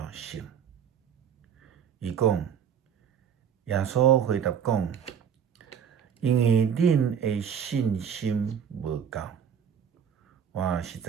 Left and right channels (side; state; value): left; quieter; 8.0 dB